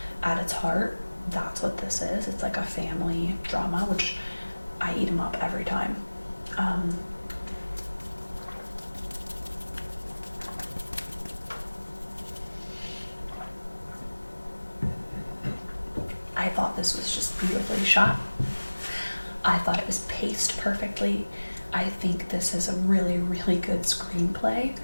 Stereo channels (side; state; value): both; inverted; correlation -1.00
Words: at its heart, that's what this is. It's like a family drama, which I eat them up every time. I thought this was just beautifully shot. I thought it was paced perfectly. I think this is a really, really good screenplay.